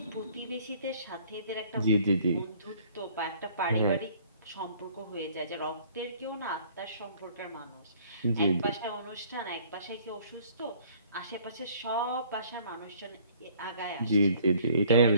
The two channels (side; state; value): both; inverted; correlation -0.57